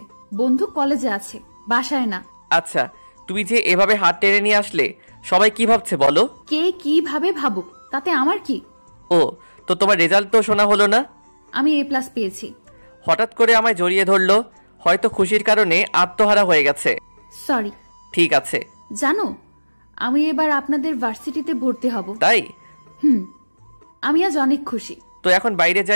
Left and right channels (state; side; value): inverted; both; correlation -1.00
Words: বন্ধু কলেজে আছে, বাসায় না। আচ্ছা, তুমি যে এভাবে হাত টেনে নিয়ে আসলে সবাই কি ভাবছে বলো? কে কিভাবে ভাবুক, তাতে আমার কি? ও, তো তোমার রেজাল্ট তো শোনা হলো না? আমি A+ পেয়েছি। হঠাৎ করে আমায় জড়িয়ে ধরলো। হয়তো খুশির কারণে আত্মহারা হয়ে গেছে। সরি। ঠিক আছে। জানো, আমি এবার আপনাদের ভার্সিটিতে ভর্তি হব। তাই? হুম। আমি আজ অনেক খুশি। তো এখন বাইরে